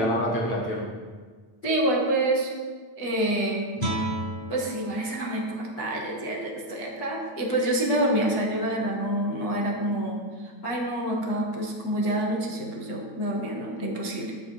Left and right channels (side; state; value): right; late; 8.8 ms